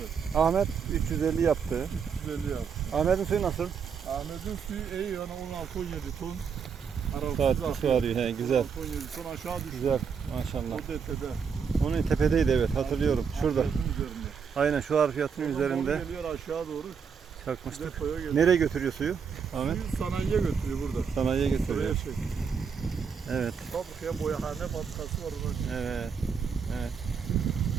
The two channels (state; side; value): quieter; left; 6.3 dB